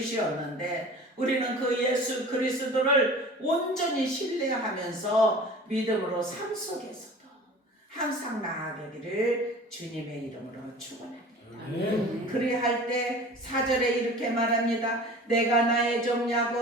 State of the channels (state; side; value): normal; both; correlation 0.41